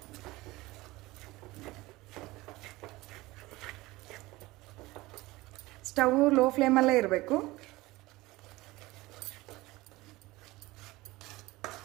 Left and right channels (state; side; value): quieter; left; 20.0 dB